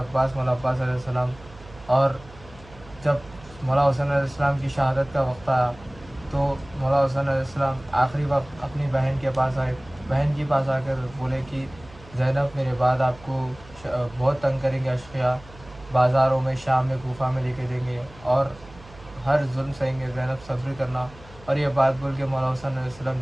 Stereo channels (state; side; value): noise; right; hum, 21 dB below the sound